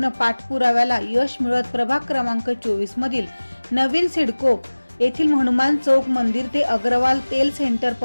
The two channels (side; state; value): both; inverted; correlation -1.00